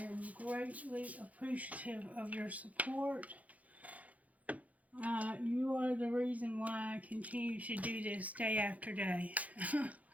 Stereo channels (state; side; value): late; left; 0.071 ms